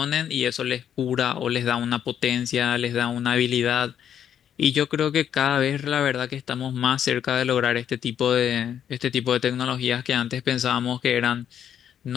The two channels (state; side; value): quieter; right; 9.3 dB